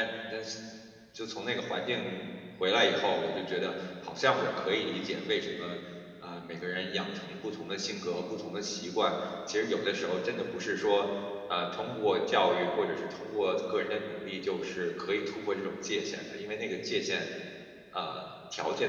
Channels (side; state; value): both; identical; correlation 1.00